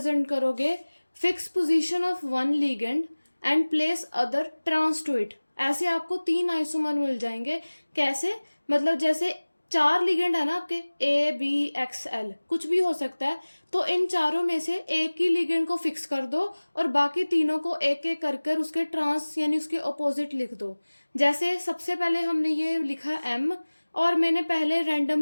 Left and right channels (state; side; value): inverted; both; correlation -1.00